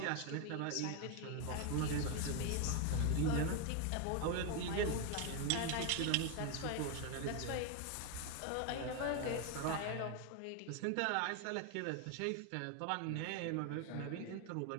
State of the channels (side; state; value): both; different; correlation 0.01